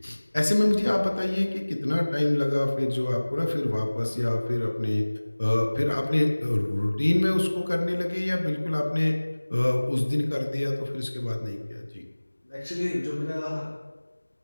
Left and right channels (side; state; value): both; inverted; correlation -1.00